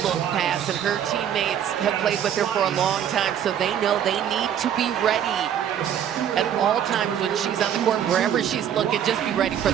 pass, and her teammates have played with her for a long time, so they know they need to be ready at all times when she's on the court. Wherever she's looking, just be ready for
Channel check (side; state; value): left; quieter; 9.5 dB